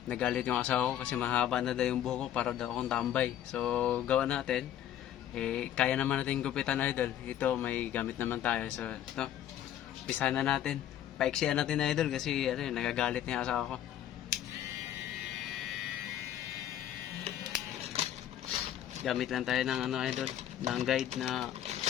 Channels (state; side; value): quieter; right; 11.1 dB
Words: nagalit yung asawa ko kasi mahaba na daw yung buhok ko para daw akong tambay. So gawa natin, kaya naman natin gupitan idol. Ito may gamit naman tayo. So ito, umpisahan na natin. Paiksiyan natin idol kasi nagagalit niya asawa ko. Gamit lang tayo ng idol, ng guide na